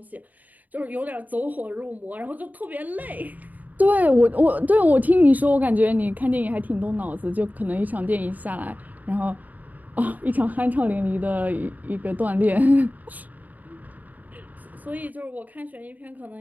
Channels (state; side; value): late; left; 0.080 ms